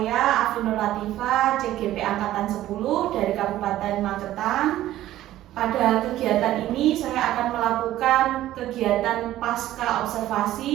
Afinul Latifah, CGP Angkatan 10 dari Kabupaten Magetan. Pada kegiatan ini saya akan melakukan kegiatan pasca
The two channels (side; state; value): left; quieter; 14.0 dB